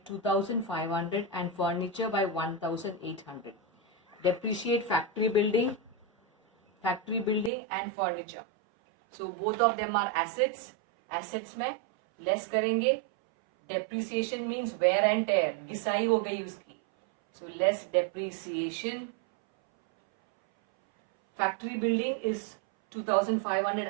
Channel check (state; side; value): drops out; left; at 7.5 s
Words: 2,500 and furniture by 1,800. Depreciate factory building and furniture. So both of them are assets. Assets में less करेंगे. Depreciation means wear and tear, घिसाई हो गई उसकी. So less depreciation. Factory building is 2500